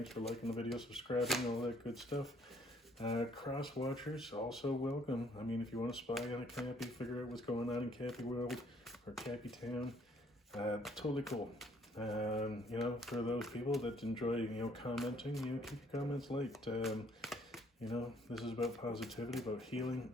for liking the video, subscribing, all that good stuff. Cross watchers, also welcome. I mean, if you want to spy on a Cappy, figure out what's going on in Cappy World or Cappy Town, totally cool. You know, for those people that enjoy, commenting, keep your comments light. You know, this is about positivity, about healing,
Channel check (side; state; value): both; normal; correlation 0.63